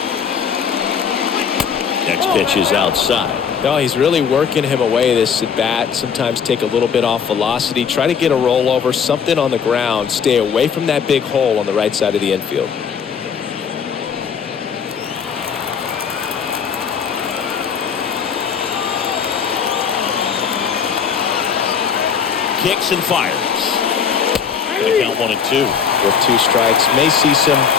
Next pitch is outside. No, he's really working him away this at bat. Sometimes take a little bit off velocity. Try to get a rollover, something on the ground. Stay away from that big hole on the right side of the infield. Kicks and fires. They count 1-2. With 2 strikes. May see some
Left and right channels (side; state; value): right; quieter; 6.9 dB